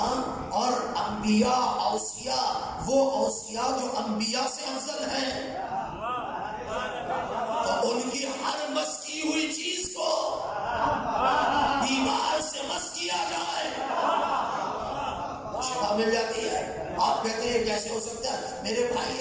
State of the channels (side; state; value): both; identical; correlation 1.00